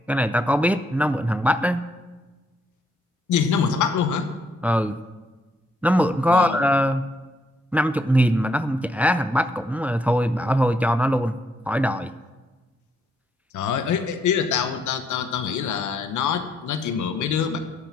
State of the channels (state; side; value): normal; both; correlation 0.72